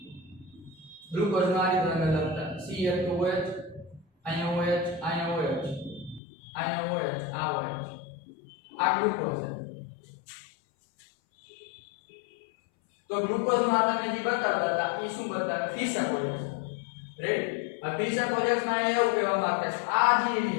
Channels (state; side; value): drops out; right; at 6.2 s